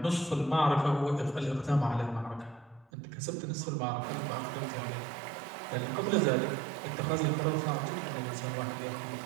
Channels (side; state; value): left; drops out; at 2.9 s